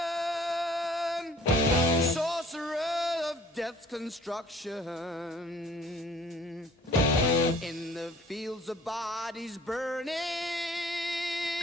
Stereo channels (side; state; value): both; normal; correlation 0.53